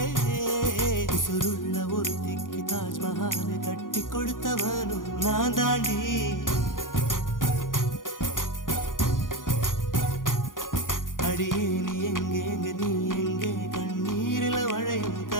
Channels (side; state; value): right; late; 0.89 ms